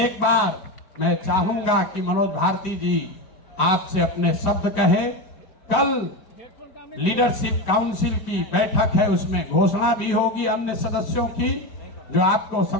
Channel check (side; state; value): right; late; 5.1 ms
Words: बार मैं चाहूंगा कि मनोज भारती जी आपसे अपने शब्द कहे। कल लीडरशिप काउंसिल की बैठक है, उसमें घोषणा भी होगी अन्य सदस्यों की, जो आपको